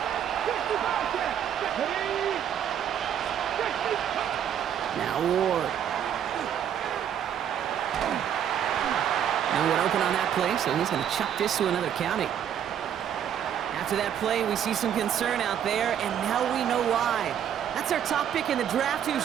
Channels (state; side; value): quieter; left; 9.4 dB